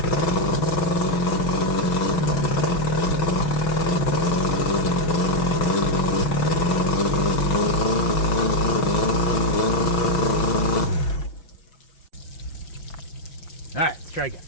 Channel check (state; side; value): late; right; 6.2 ms